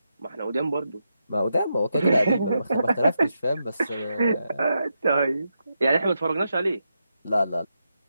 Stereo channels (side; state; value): both; inverted; correlation -0.85